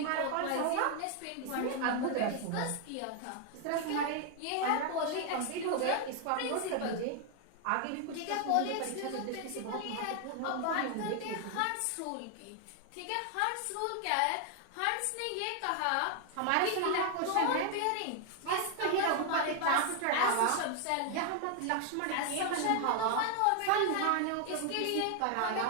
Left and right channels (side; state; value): both; different; correlation 0.00